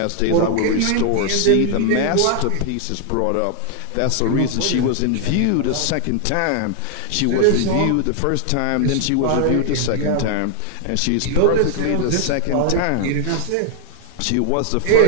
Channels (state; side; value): different; both; correlation 0.00